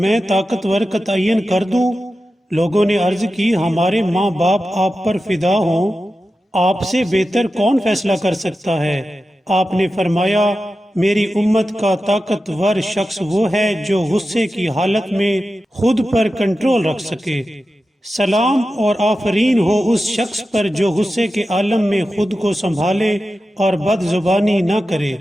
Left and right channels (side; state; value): both; normal; correlation 0.92